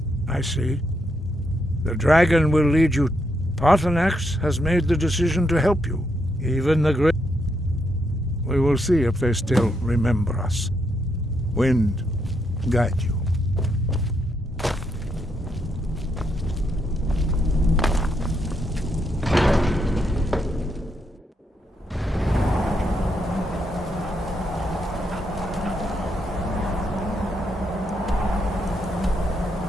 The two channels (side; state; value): both; normal; correlation 0.79